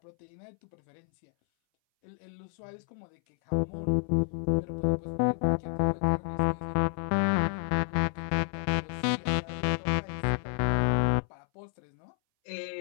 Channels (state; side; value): silent; right; 58 dB below the other